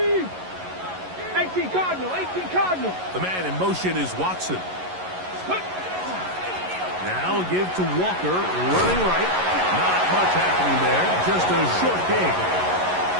18 Cardinal, 18 Cardinal. The man in motion is Watson. Now give to Walker, running right. Not much happening there, just a short gain.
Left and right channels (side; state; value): left; late; 11 ms